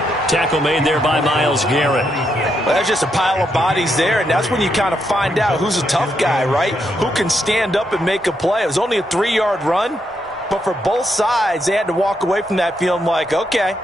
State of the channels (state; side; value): normal; both; correlation 0.80